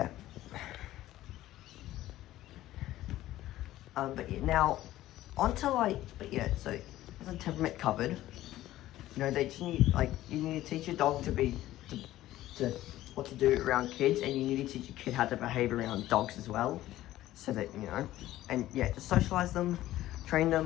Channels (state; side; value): quieter; right; 14.8 dB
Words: But yeah, now onto so the temperament covered. They just need you need to teach your dog to what to do around kids, and you need to teach your kid how to behave around dogs as well, so that and yeah, just socialize them, train